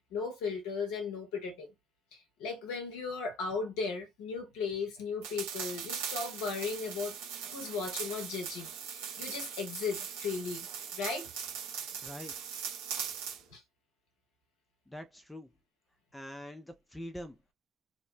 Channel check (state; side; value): normal; both; correlation 0.45